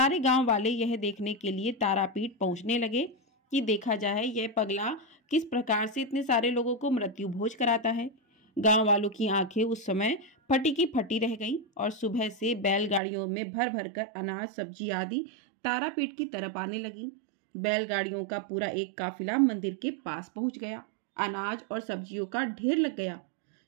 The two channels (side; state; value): left; drops out; at 13.0 s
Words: गांव वाले यह देखने के लिए तारापीठ पहुंचने लगे कि देखा जाए यह पगला किस प्रकार से इतने सारे लोगों को मृत्यु भोज कराता है। गांव वालों की आंखें उस समय फटी की फटी रह गईं और सुबह से बैलगाड़ियों में भर भर कर अनाज, सब्जी आदि तारापीठ की तरफ आने लगी। बैलगाड़ियों का पूरा एक काफिला मंदिर के पास पहुंच गया। अनाज और सब्जियों का ढेर लग गया।